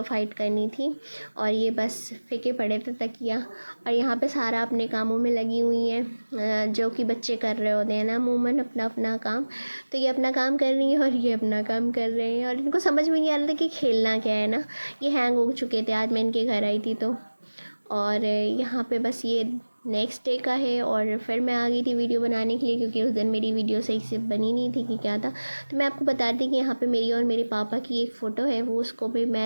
फाइट करनी थी। और ये बस फेंके पड़े थे तकिया। और यहाँ पे सारा अपने कामों में लगी हुई हैं जो कि बच्चे कर रहे होते हैं ना अमूमन अपना अपना काम। तो ये अपना काम कर रही है और ये अपना काम कर रहे हैं और इनको समझ में नहीं आ रहा था कि खेलना क्या है ना। ये हैंग हो चुके थे, आज मैं इनके घर आई थी तो। और यहाँ पे बस ये नेक्स्ट डे का है और फिर मैं आ गई थी वीडियो बनाने के लिए, क्योंकि उस दिन मेरी वीडियो सही से बनी नहीं थी कि क्या था। तो मैं आपको बता दी कि यहाँ पे मेरी और मेरे पापा की एक फ़ोटो है, वो उसको भी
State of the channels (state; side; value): inverted; both; correlation -1.00